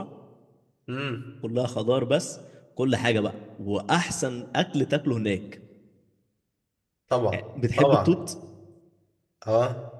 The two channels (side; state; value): both; identical; correlation 1.00